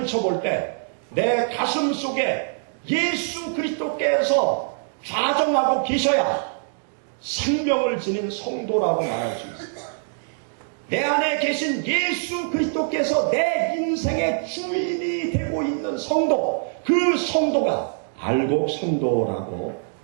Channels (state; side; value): silent; left; digital silence